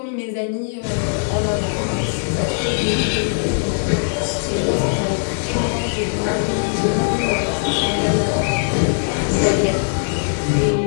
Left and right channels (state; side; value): silent; right; digital silence